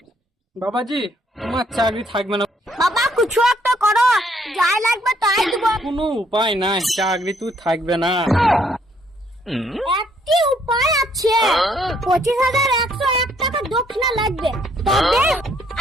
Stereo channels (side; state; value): both; normal; correlation 0.67